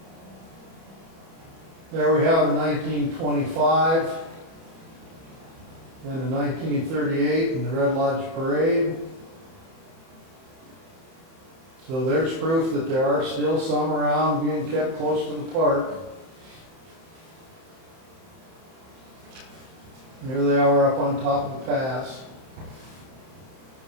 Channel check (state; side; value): late; left; 31 ms